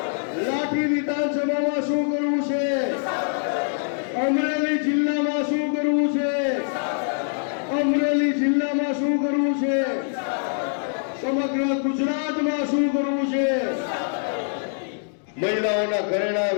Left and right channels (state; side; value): silent; right; digital silence